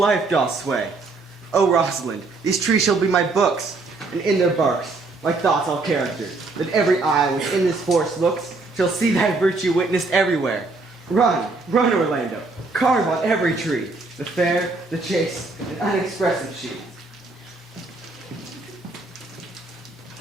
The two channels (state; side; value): quieter; left; 3.6 dB